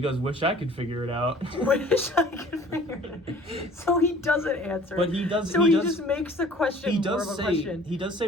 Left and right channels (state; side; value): normal; both; correlation 0.50